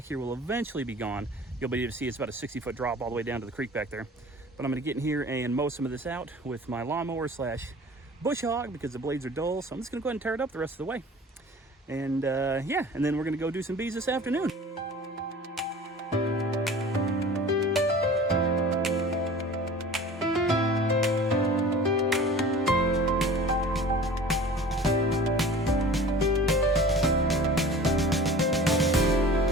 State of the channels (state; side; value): normal; both; correlation 0.42